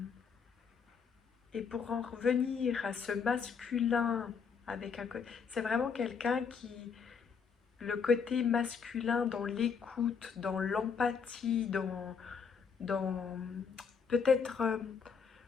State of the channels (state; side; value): quieter; right; 6.1 dB